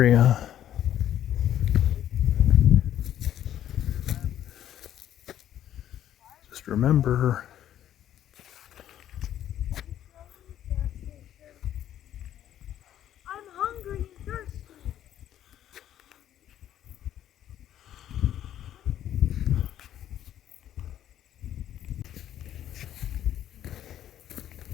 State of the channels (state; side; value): quieter; right; 11.3 dB